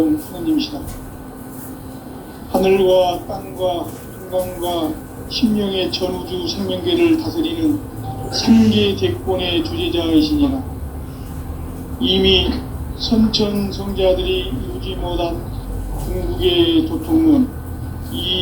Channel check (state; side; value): identical; both; correlation 1.00